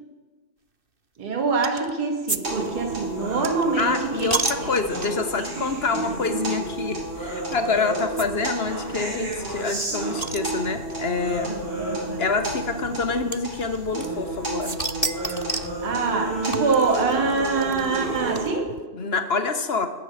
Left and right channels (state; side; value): late; right; 2.6 ms